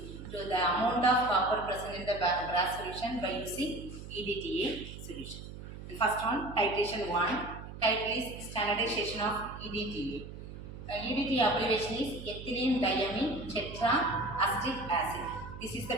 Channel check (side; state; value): right; noise; hum, 12 dB below the sound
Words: to the amount of copper present in the brass solution by using EDTA solution. The first one, titration 1. Title is standardization of EDTA. EDTA abbreviation is ethylene diamine tetraacetic acid. This is the